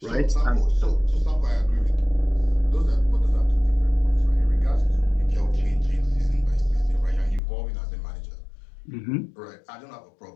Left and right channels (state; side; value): drops out; right; at 7.4 s